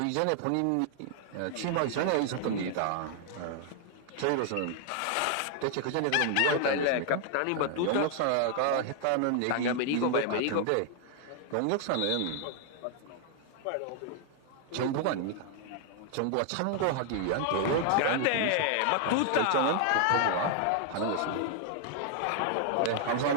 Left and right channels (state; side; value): different; both; correlation 0.00